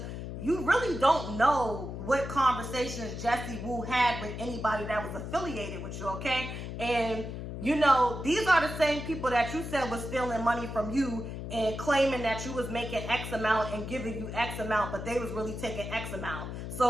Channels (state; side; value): noise; left; hum, 7 dB below the sound